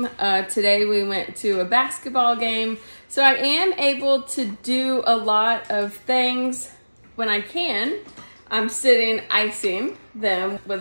Today we went to a basketball game. So I am able to do a lot of things when I can. I'm sitting icing them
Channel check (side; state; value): both; inverted; correlation -1.00